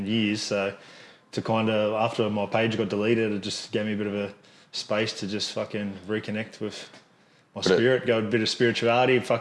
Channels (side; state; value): both; identical; correlation 1.00